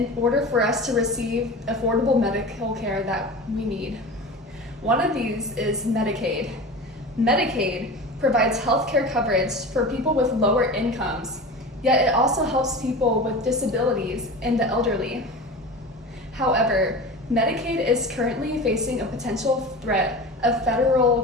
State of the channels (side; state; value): both; normal; correlation 0.32